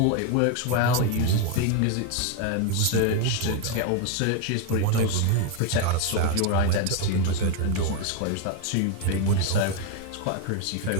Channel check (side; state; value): both; different; correlation 0.01